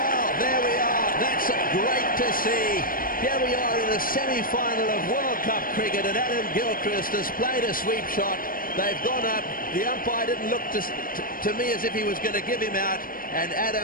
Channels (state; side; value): late; right; 0.41 ms